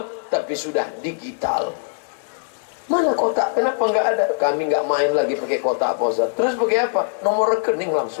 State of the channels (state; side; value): silent; right; digital silence